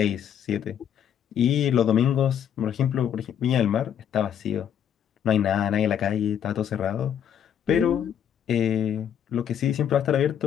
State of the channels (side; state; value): right; quieter; 9.1 dB